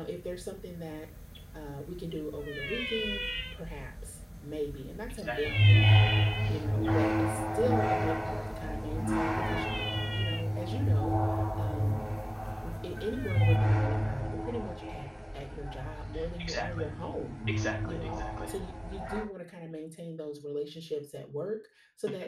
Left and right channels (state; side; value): identical; both; correlation 1.00